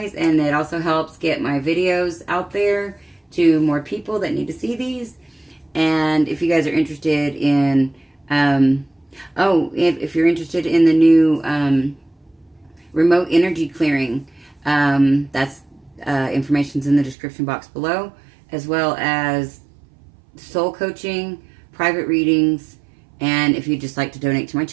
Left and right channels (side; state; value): left; drops out; at 17.2 s